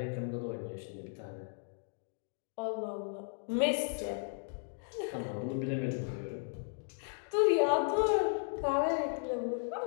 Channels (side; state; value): right; silent; digital silence